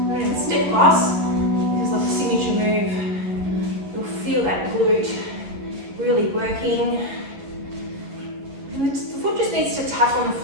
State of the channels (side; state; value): left; late; 11 ms